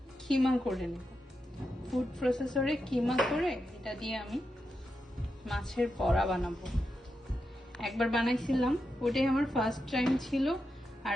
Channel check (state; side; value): normal; both; correlation 0.87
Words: কিমা করে নেব, ফুড প্রসেসরে কিমা করে এটা দিয়ে আমি মাছের বড়া বানাবো। একবার বানাইছিলাম, ওটাই আমার ফার্স্ট টাইম ছিল,